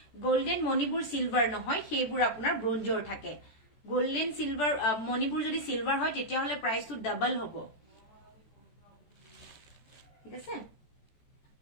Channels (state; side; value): late; right; 14 ms